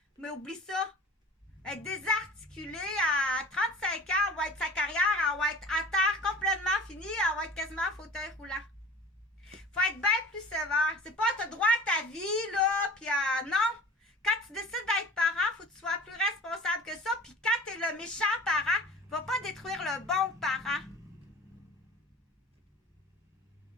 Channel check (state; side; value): normal; both; correlation 0.41